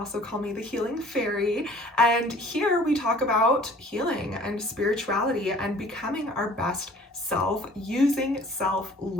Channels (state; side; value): normal; both; correlation 0.51